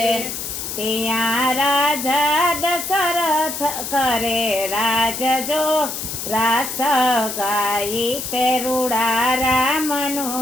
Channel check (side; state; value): left; noise; hiss, 6 dB below the sound